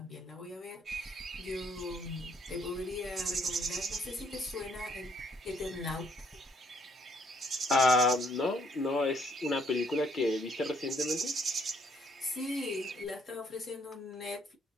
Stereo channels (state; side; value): normal; both; correlation 0.67